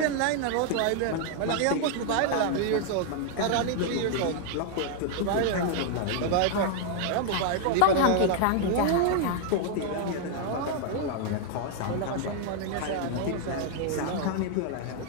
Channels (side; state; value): both; different; correlation 0.00